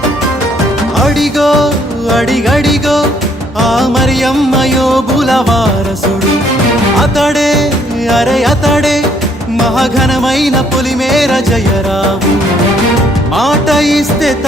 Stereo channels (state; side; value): normal; both; correlation 0.66